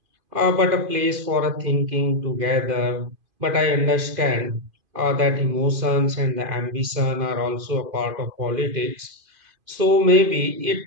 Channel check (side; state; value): left; late; 2.5 ms